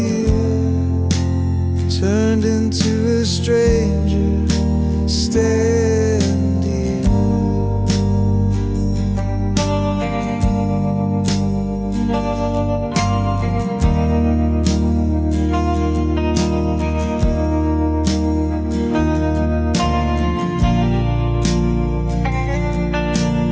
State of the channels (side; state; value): both; identical; correlation 1.00